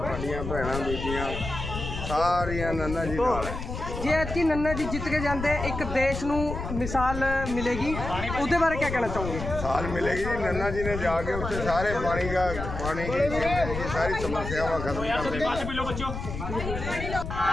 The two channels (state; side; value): noise; left; rumble, 6 dB below the sound